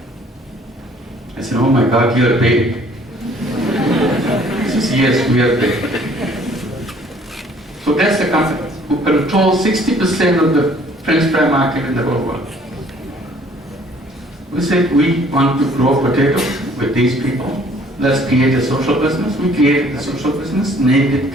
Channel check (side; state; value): both; normal; correlation 0.58